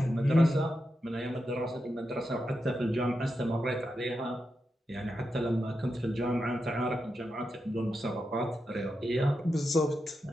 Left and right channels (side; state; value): both; normal; correlation 0.87